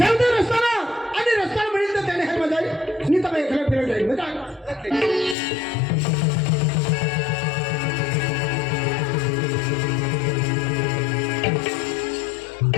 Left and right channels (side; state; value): right; drops out; at 5.4 s